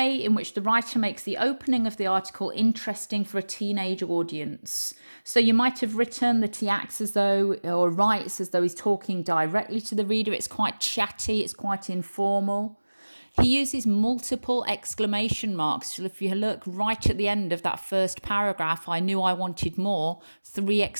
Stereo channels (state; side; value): inverted; both; correlation -1.00